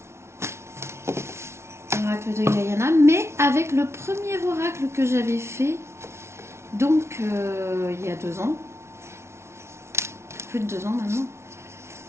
Oracle de Guyana, mais avec le premier oracle que j'avais fait, donc il y a 2 ans. Plus de 2 ans maintenant.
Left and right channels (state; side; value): late; left; 0.13 ms